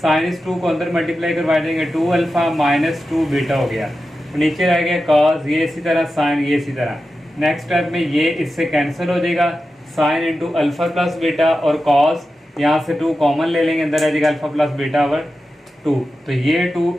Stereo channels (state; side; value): normal; both; correlation 0.92